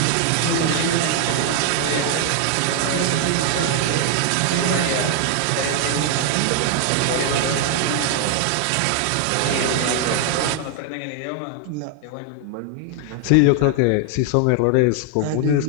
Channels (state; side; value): different; both; correlation 0.00